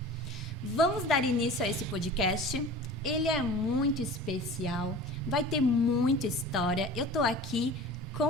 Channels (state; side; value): normal; both; correlation 0.39